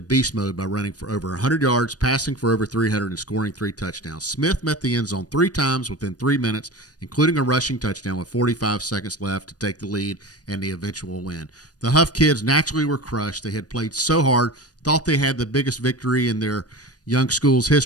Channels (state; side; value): late; right; 0.68 ms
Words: beast mode by running for over 100 yards, passing for over 300, and scoring 3 touchdowns. Smith met the end zone 3 times within 3 minutes, including a rushing touchdown with 45 seconds left to take the lead and the eventual win. The Huff kids naturally were crushed. They had played so hard, thought they had the biggest victory in their young school's